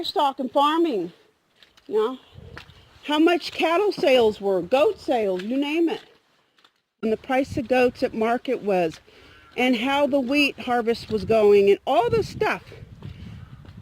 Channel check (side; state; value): both; identical; correlation 1.00